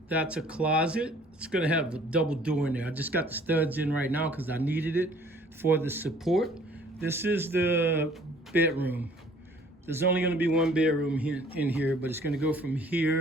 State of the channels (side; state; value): both; normal; correlation 0.55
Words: That's a closet. It's going to have a double door in there. I just got the studs in right now because I needed it for the support. This is the bedroom. There's only going to be one bedroom in here, but it's going to go from